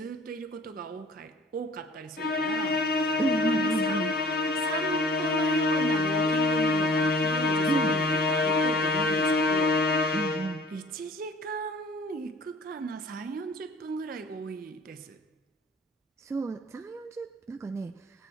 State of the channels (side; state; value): both; normal; correlation 0.48